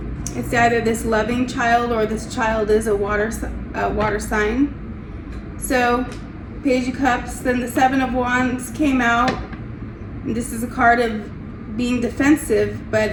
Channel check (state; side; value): identical; both; correlation 1.00